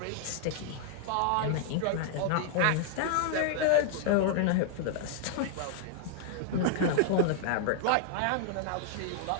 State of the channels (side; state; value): both; different; correlation 0.00